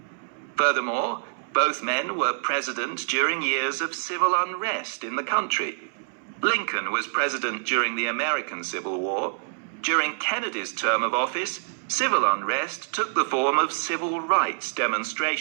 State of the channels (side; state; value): left; silent; 61 dB below the other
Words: Furthermore, both men were president during years of civil unrest in the country. Lincoln was president during the American Civil War. During Kennedy's term of office, civil unrest took the form of civil rights